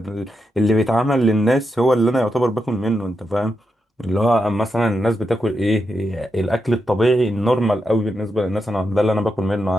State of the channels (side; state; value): both; normal; correlation 0.85